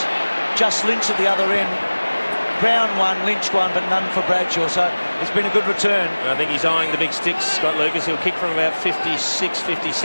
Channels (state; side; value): inverted; both; correlation -1.00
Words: Just Lynch at the other end. Brown one, Lynch one, but none for Bradshaw. So it's been a good return. And I think he's eyeing the big sticks, Scott Lucas. He'll kick from about 56,